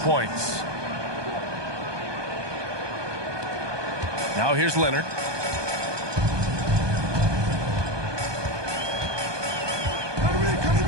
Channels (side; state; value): left; late; 1.2 ms